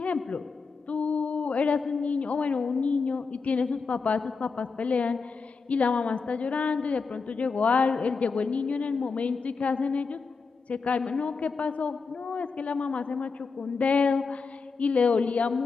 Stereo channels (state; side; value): quieter; right; 4.8 dB